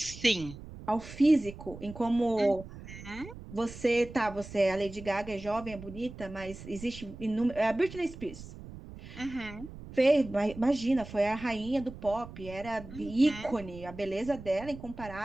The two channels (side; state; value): right; noise; rumble, 14 dB below the sound